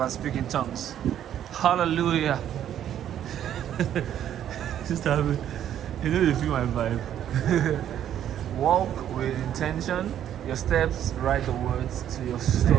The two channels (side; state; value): left; quieter; 10.5 dB